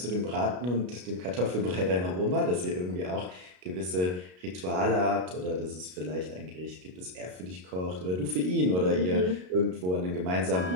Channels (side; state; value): left; late; 33 ms